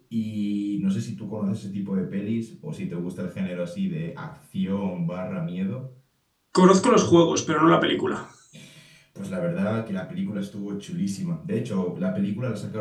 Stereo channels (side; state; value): both; identical; correlation 1.00